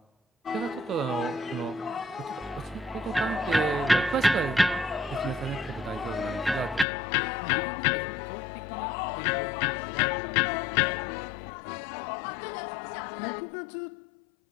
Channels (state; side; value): drops out; right; at 6.9 s